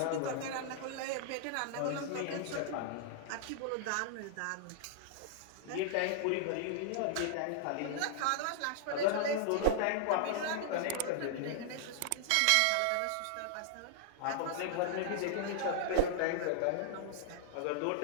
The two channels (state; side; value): different; both; correlation -0.01